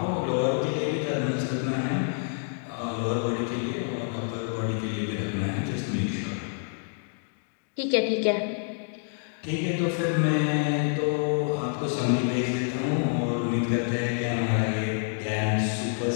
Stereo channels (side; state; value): right; silent; 60 dB below the other